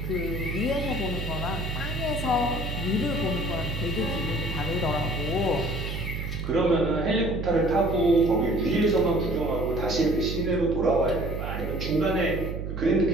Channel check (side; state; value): right; noise; hum, 5 dB below the sound